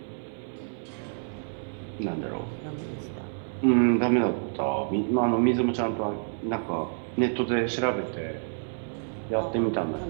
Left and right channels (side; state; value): left; silent; 59 dB below the other